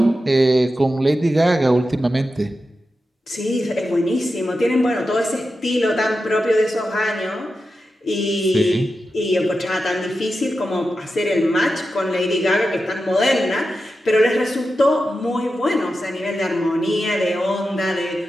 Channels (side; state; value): both; normal; correlation 0.91